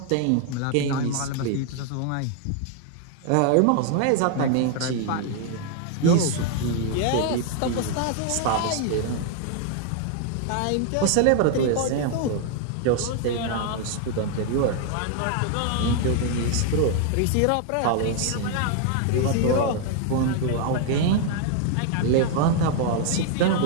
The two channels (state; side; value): different; both; correlation 0.00